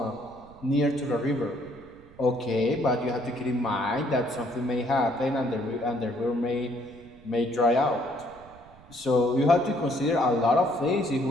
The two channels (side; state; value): right; noise; rumble, 23 dB below the sound